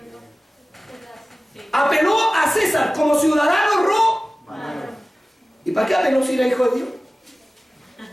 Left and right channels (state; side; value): normal; both; correlation 0.97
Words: Apeló a César como ciudadano romano. ¿Y para qué apeló si era hijo de Dios?